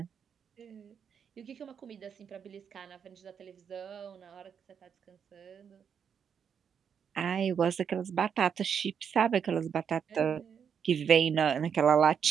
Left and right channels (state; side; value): quieter; left; 7.4 dB